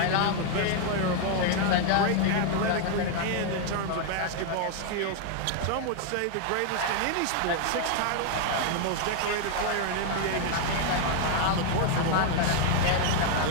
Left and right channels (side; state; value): both; different; correlation 0.00